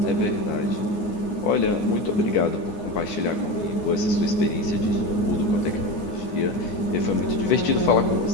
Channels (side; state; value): right; late; 9.7 ms